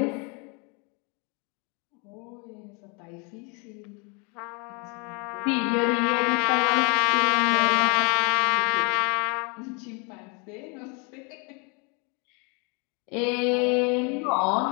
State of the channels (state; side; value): quieter; right; 33.2 dB